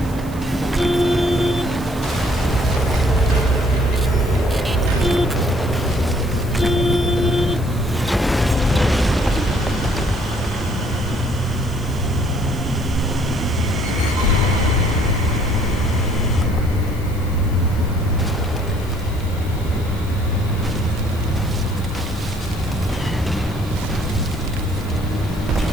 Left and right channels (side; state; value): left; noise; hiss, 20 dB below the sound